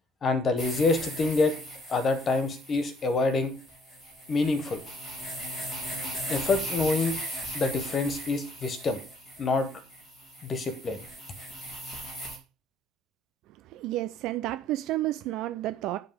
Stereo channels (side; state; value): both; normal; correlation 0.61